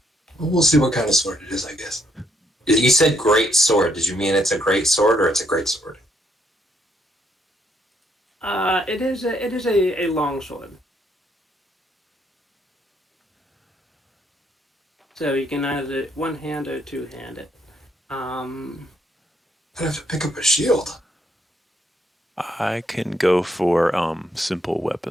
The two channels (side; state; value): both; normal; correlation 0.73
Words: Well, we'll see what kind of sword it is, I guess. You said great sword. Did you mean it's a great sword or it's a great sword? It is a long sword. So you can either one hand or two hand it. I'd have to pick up a shield. I can go for simple